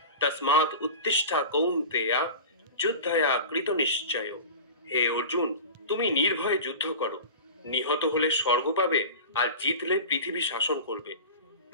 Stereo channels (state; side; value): inverted; both; correlation -0.31